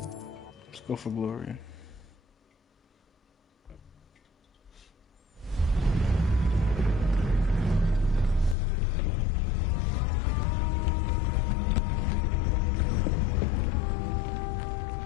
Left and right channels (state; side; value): drops out; right; at 8.6 s